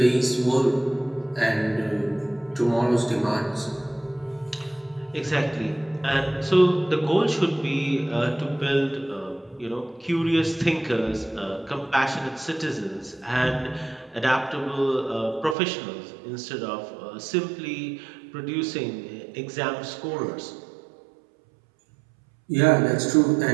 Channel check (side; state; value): left; drops out; at 15.6 s